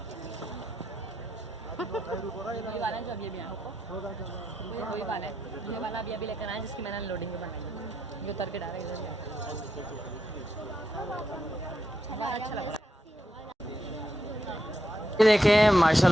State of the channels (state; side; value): normal; both; correlation 0.82